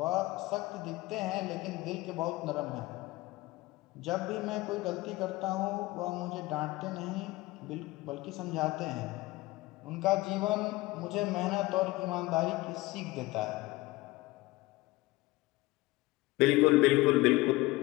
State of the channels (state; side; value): quieter; right; 20.4 dB